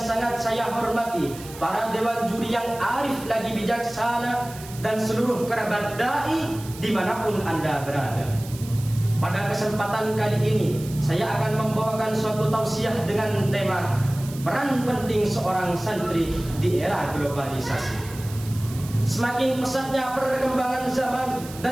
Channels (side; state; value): right; noise; hiss, 16 dB below the sound